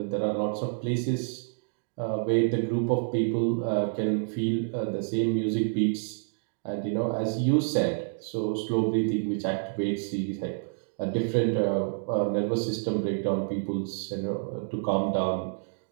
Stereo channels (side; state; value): left; silent; digital silence